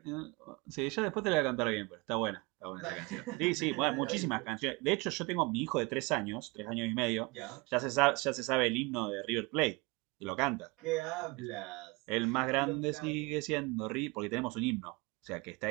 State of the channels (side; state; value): left; quieter; 26.4 dB